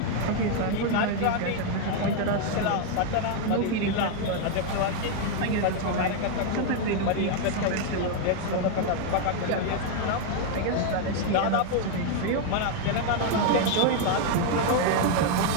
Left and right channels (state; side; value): different; both; correlation 0.00